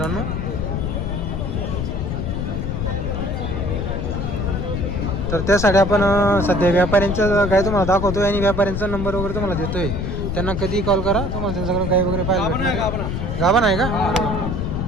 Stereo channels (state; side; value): noise; left; rumble, 2 dB below the sound